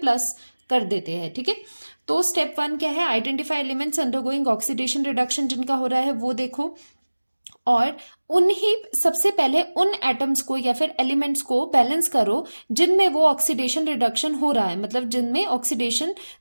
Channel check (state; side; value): inverted; both; correlation -1.00